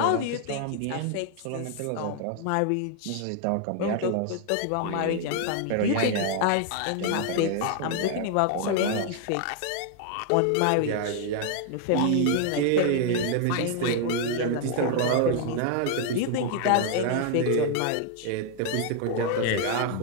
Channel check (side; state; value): both; different; correlation 0.00